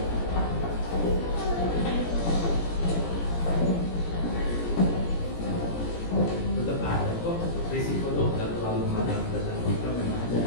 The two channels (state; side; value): late; right; 17 ms